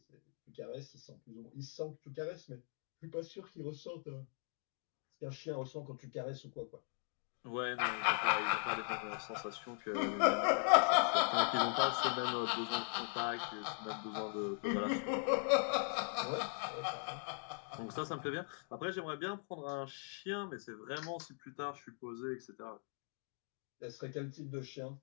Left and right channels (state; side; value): silent; right; 51 dB below the other